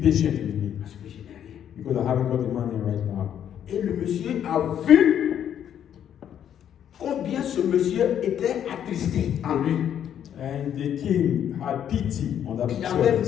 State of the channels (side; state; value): right; quieter; 9.6 dB